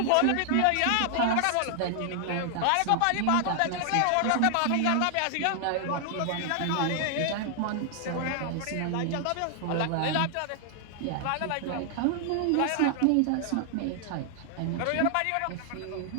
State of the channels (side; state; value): both; different; correlation 0.00